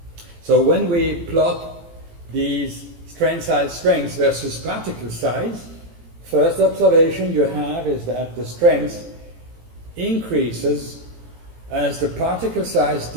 So when we plot these strain size strengths versus particle size, first observation you have is that the strength increases as the particle size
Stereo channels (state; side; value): late; left; 18 ms